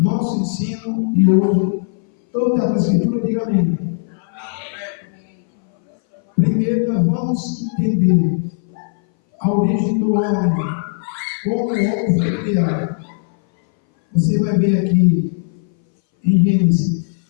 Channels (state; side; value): silent; right; 61 dB below the other